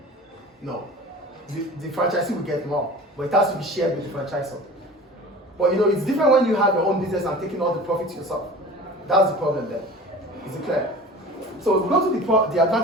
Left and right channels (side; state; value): both; normal; correlation 0.40